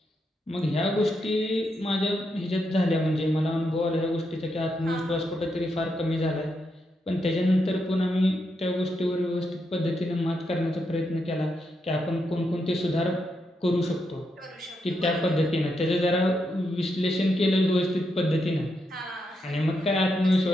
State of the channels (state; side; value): normal; both; correlation 0.82